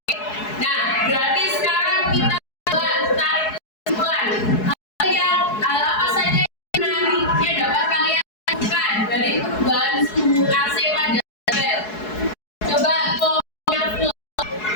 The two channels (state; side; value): late; right; 4.7 ms